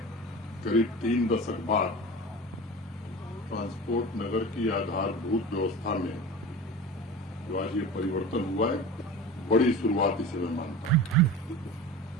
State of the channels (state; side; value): normal; both; correlation 0.33